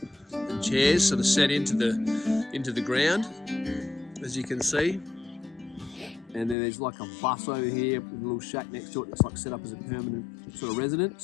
and chairs sort of set into the ground, as you can see. And then there's like a bus over here with a little shack next to it that's like set up as a permanent sort of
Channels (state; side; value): drops out; right; at 6.6 s